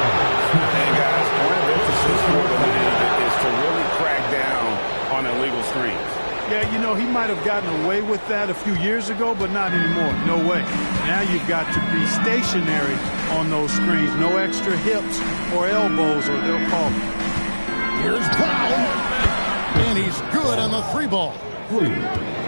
And guys, one of the emphasis for the league is to really crack down on illegal screens. Yeah, you know, he might have gotten away with that a few years ago, but not anymore. No way. Now you've got to be stationary on those screens. No extra hips or elbows, or they'll call it. Here's Brown. And he's good on the 3 ball.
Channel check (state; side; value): inverted; both; correlation -1.00